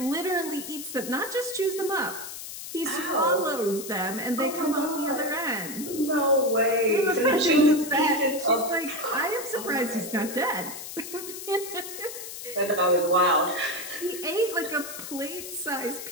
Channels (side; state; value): left; noise; hiss, 10 dB below the sound